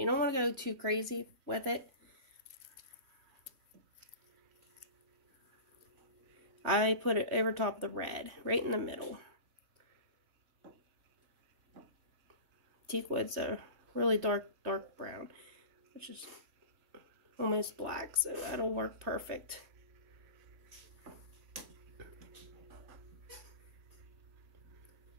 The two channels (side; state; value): left; late; 3.5 ms